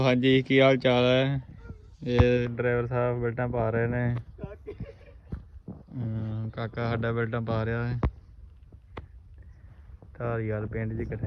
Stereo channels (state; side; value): identical; both; correlation 1.00